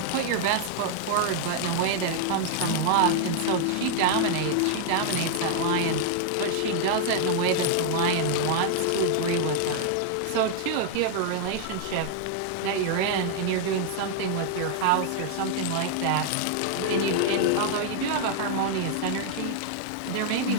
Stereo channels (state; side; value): different; both; correlation 0.00